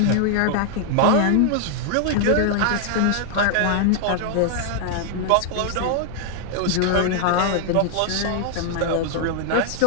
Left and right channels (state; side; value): different; both; correlation -0.01